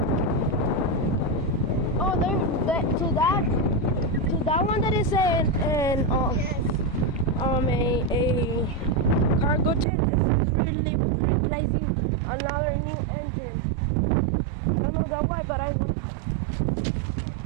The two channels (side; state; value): left; drops out; at 9.9 s